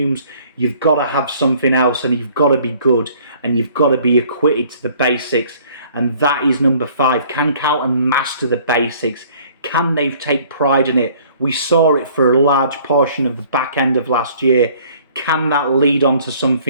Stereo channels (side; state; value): both; inverted; correlation -0.56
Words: you've got to have something else, and you've got to be good, and you've got to be acquitted to the basics. And that is number 5. Can Carlton master the basics? Can they take pride in it? We saw it for a large portion of the back end of last year. Can that lead on to